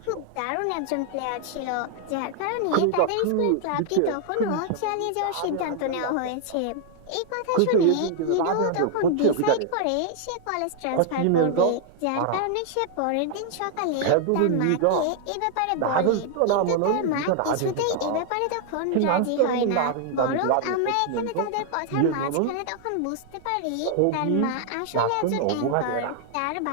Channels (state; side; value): different; both; correlation 0.00